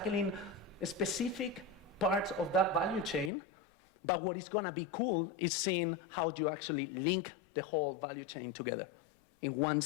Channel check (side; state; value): right; drops out; at 3.3 s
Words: specific parts of that value chain, but what is going to be cool is seeing how do you actually link the whole value chain together in one